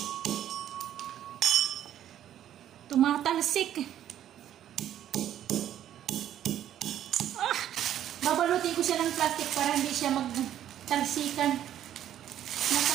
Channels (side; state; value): left; quieter; 11.2 dB